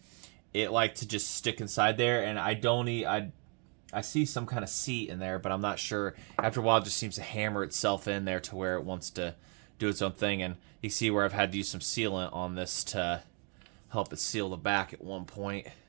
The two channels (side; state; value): left; quieter; 36.7 dB